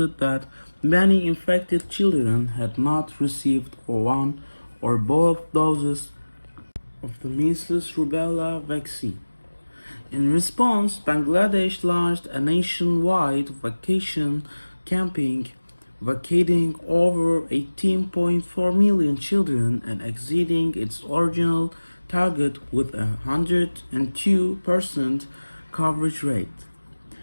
that many infected children had not received one or both doses of the measles rubella vaccine. In response, Bangladesh launched a nationwide vacation campaign, vaccinating over 18.4 million children and exceeding its original target with a 102% coverage rate.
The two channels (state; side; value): inverted; both; correlation -1.00